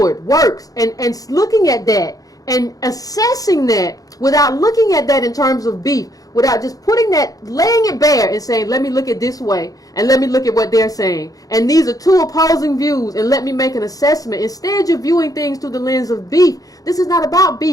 works and looking at that and assessing that without looking at that in terms of beef, without just putting that, laying it bare and saying, let me look at this way and let me look at what they're saying. And these are two opposing views and let me make an assessment. Instead, you're viewing things through the lens of beef. This is not about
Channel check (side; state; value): right; late; 0.17 ms